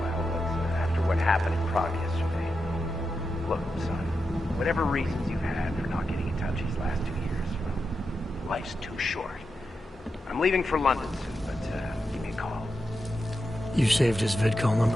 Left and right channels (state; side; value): normal; both; correlation 0.88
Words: but after what happened in Prague yesterday... Look, son, whatever reasons you had for not getting in touch these last 2 years, well, life's too short. I'm leaving for London soon, but give me a call. You saved his vidcall